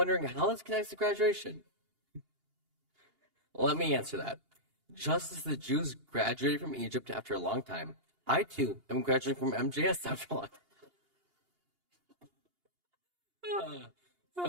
how this connects to graduation. Let me answer that. Just as the Jews graduated from Egypt after a long time, I too am graduating from MJS after a long time.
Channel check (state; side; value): late; left; 2.8 ms